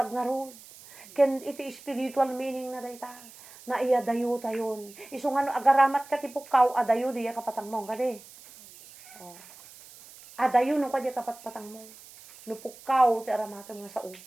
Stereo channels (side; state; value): right; noise; hiss, 20 dB below the sound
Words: nga ron. Ken iti spiritual meaning na dayta. Na iya dayo tayon. Isu nga no agaramat ka ti pukaw adayo diya kapatang mo kadi. Oh. Adayo no kadya kapatpatang mo. No pukaw ti aramatan nga sao.